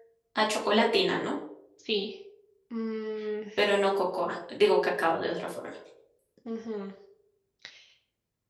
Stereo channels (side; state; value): both; identical; correlation 1.00